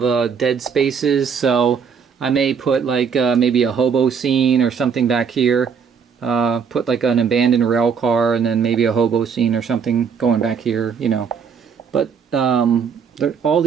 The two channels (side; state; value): left; quieter; 6.5 dB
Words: dead spaces, so I may put like maybe a hobo scene or something back here. Put like an abandoned rail car, and then maybe a hobo scene or something going back here, you know. But all